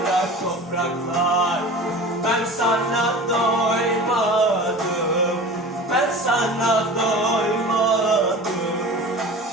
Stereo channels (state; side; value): normal; both; correlation 0.37